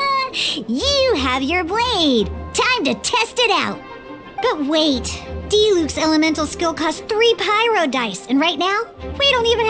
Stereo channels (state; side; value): identical; both; correlation 1.00